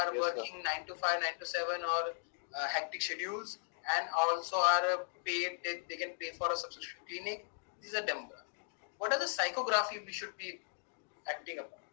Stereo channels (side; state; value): right; silent; digital silence